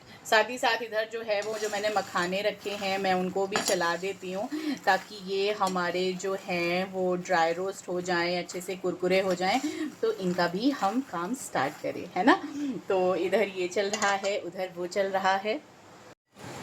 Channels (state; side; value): identical; both; correlation 1.00